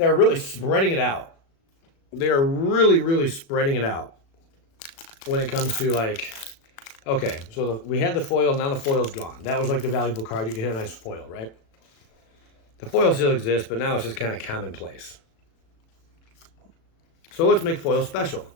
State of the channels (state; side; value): late; right; 36 ms